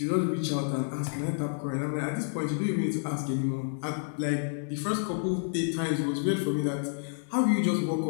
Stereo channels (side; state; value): right; silent; digital silence